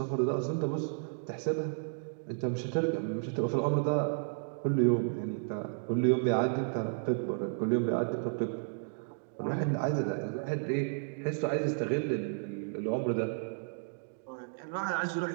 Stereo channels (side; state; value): left; silent; digital silence